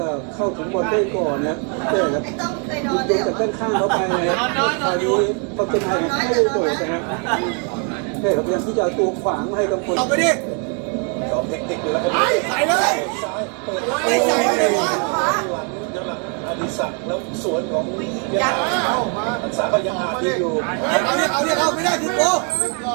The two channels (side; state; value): left; quieter; 38.7 dB